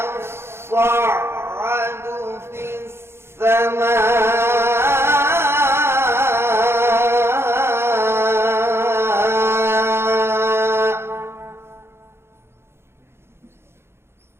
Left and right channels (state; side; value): late; left; 0.12 ms